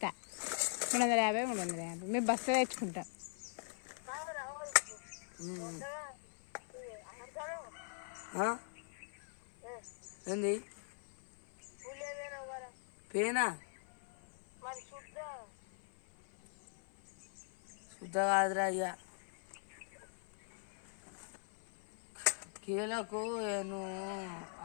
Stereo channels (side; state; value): right; silent; 50 dB below the other